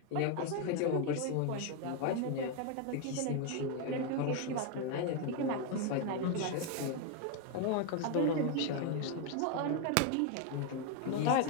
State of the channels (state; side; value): different; both; correlation 0.01